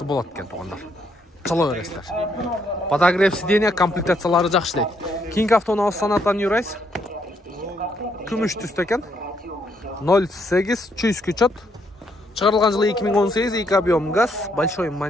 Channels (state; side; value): normal; both; correlation 0.73